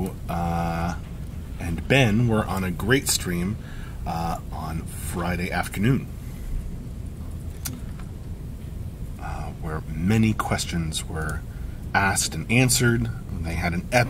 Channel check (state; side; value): identical; both; correlation 1.00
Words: and Ben were on a great stream on Friday afternoon, where many questions were asked and answered. They had an